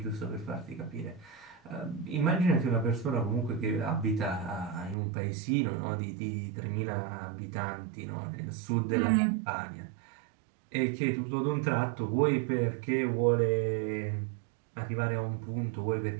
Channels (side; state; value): left; drops out; at 5.0 s